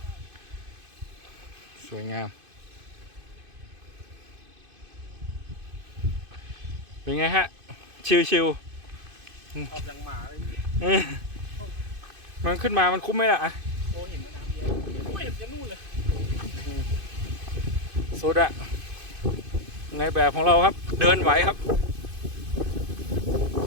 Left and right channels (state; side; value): late; left; 2.5 ms